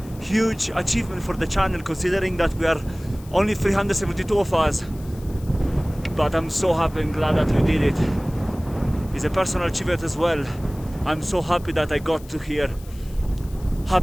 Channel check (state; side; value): noise; left; hiss, 23 dB below the sound